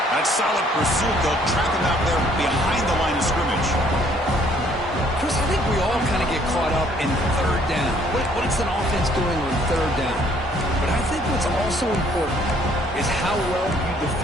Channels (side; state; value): both; normal; correlation 0.62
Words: That solid pursuit. They'll trap him out there behind the line of scrimmage. Chris, I think we all kind of get caught up in third down. What's an offense doing on third down? But I think what's also important is how well you